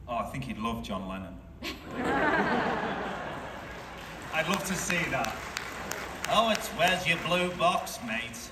Oh, I think he'd love John Lennon. I'd love to see that. Oh, it's where's your blue box, mate?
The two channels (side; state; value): both; identical; correlation 1.00